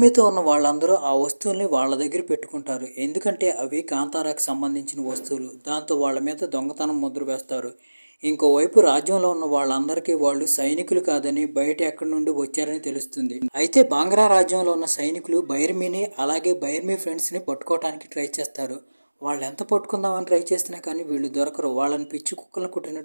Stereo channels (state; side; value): inverted; both; correlation -1.00